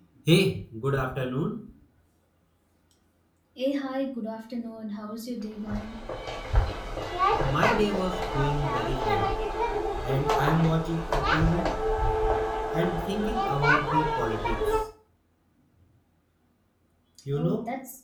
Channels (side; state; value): both; identical; correlation 1.00